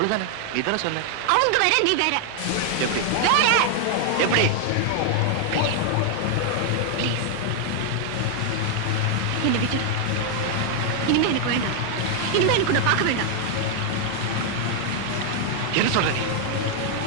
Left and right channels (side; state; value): both; different; correlation 0.00